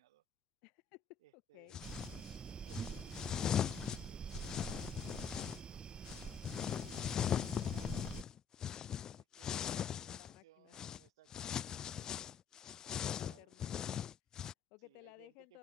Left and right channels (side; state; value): right; quieter; 6.5 dB